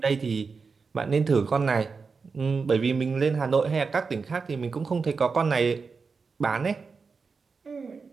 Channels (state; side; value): quieter; left; 4.9 dB